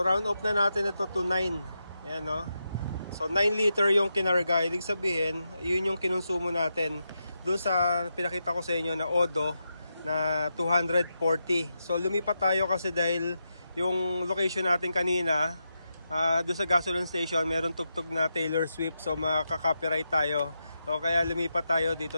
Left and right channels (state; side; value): inverted; both; correlation -0.86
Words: round off na natin ito to 9. Ayan, no? So 9 liter yung kinarga. Ibig sabihin, yun yung kinonsumo natin doon sa pinakita ko sa inyo na Odo na 240. So lumipat tayo kasi dahil yung location natin kanina, doon sa gasoline station, meron tugtog na Taylor Swift, so makaka-copyright tayo. So kaya lumipat tayo,